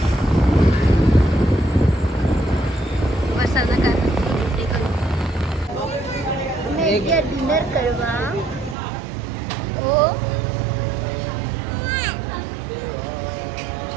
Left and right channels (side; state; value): left; drops out; at 8.8 s